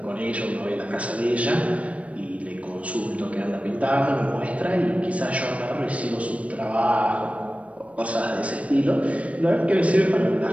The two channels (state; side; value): late; left; 0.064 ms